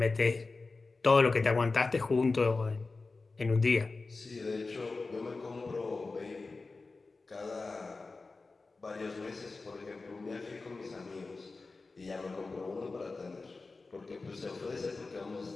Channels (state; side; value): quieter; right; 3.8 dB